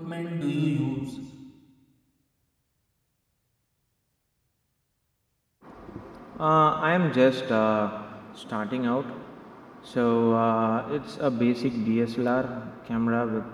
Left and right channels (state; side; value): identical; both; correlation 1.00